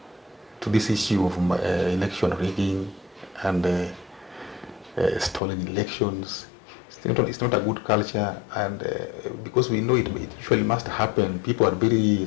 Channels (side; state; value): right; drops out; at 5.4 s